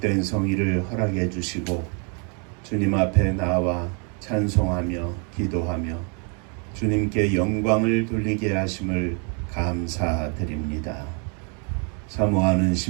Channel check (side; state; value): left; quieter; 37.2 dB